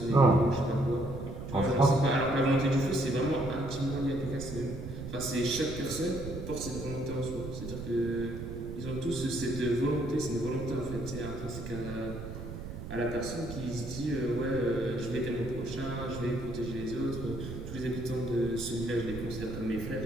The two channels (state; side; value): noise; right; rumble, 9 dB below the sound